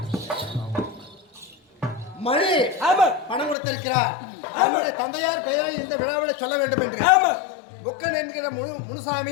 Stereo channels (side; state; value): right; drops out; at 3.6 s